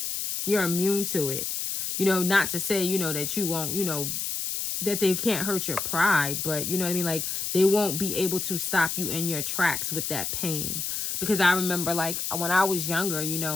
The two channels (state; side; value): noise; left; hiss, 2 dB below the sound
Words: You're immune to it. You know, not to say, you know, that you won't, you know, that they can't hurt your pride, but you know what I mean? Like, they won't be able to stop you in your tracks with that pain. Because I remember, like, when I was younger, you